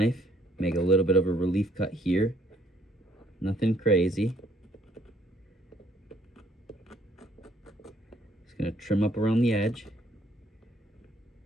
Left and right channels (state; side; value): normal; both; correlation 0.66